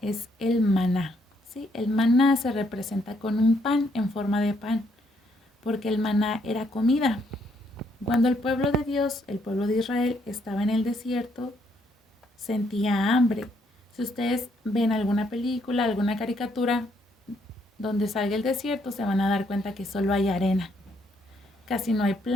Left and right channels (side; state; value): both; normal; correlation 0.72